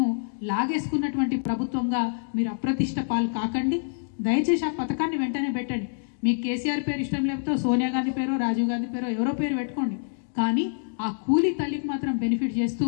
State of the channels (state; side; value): silent; right; digital silence